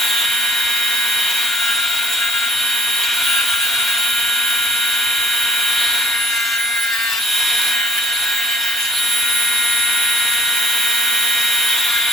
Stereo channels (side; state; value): both; normal; correlation 0.59